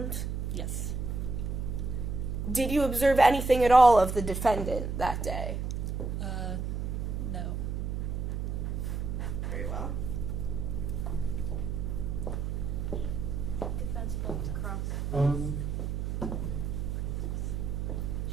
Yes. Did you observe anything at all of the defendant that day? No. Very well. Defense would like to cross.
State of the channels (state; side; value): noise; right; hum, 2 dB below the sound